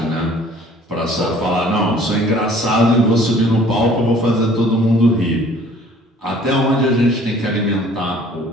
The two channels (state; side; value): normal; both; correlation 0.54